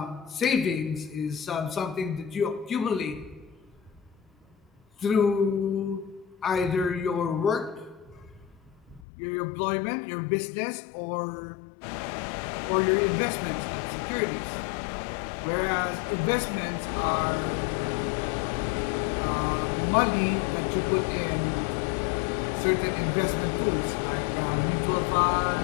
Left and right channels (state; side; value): drops out; right; at 9.1 s